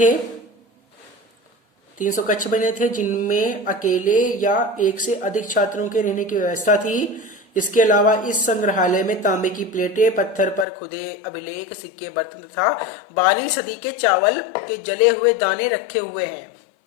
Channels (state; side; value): drops out; right; at 10.7 s